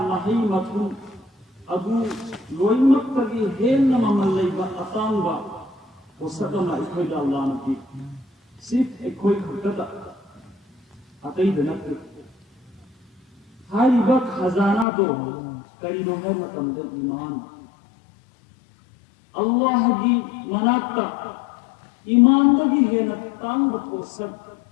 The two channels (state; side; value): drops out; right; at 14.9 s